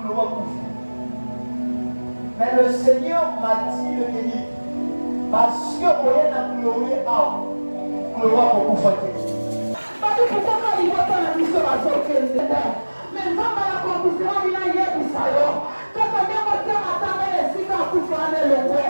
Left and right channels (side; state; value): both; inverted; correlation -1.00